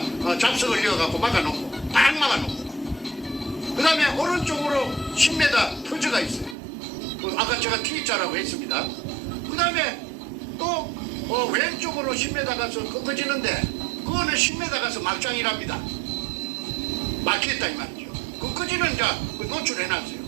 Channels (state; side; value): drops out; left; at 6.6 s